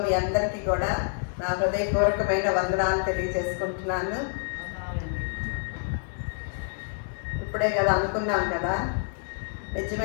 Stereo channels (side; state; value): right; silent; digital silence